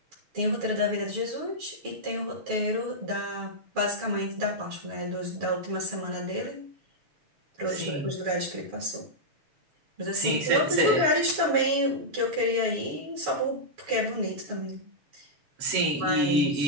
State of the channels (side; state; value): left; late; 6.9 ms